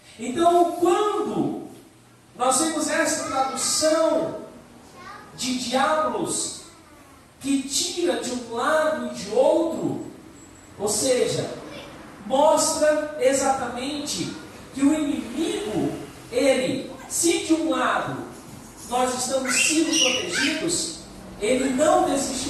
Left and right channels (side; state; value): both; identical; correlation 1.00